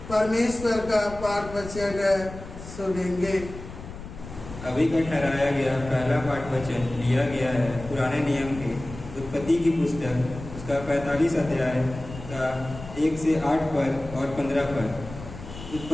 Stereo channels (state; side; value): noise; left; rumble, 13 dB below the sound